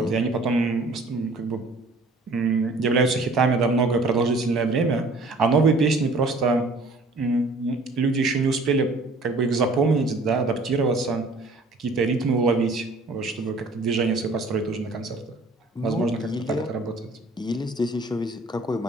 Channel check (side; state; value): left; quieter; 3.0 dB